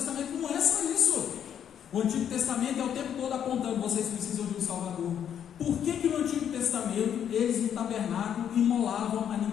não é só isso. O Antigo Testamento é o tempo todo apontando, vocês precisam de um Salvador. Por que no Antigo Testamento eles no tabernáculo imolavam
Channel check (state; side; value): quieter; right; 9.1 dB